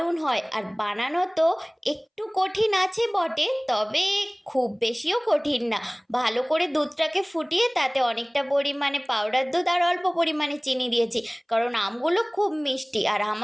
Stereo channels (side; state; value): both; identical; correlation 1.00